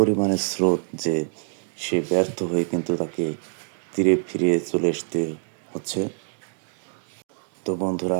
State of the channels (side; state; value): left; silent; digital silence